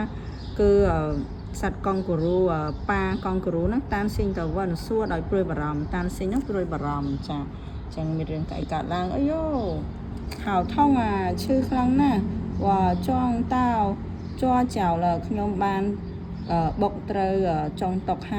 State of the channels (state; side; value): identical; both; correlation 1.00